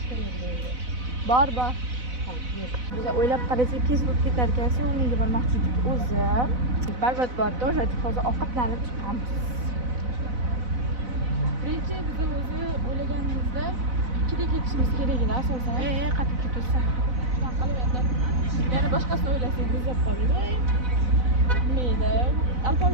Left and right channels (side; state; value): left; late; 4.0 ms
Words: Bor. Biz o'ylab qarasak, kes bo'lib ketar ekan, sevimliga bormoqchi edik o'zi. Barbat borda o'sha hozir ovqatlanib chiqamiz. Birinchi biz o'zi o'ylaganimizda 2da ketishimiz keraklar asosan. Qattiq ketursa. Shunaqa qilib endi yana boshqasini o'ylasak muzlab qoldik. Nima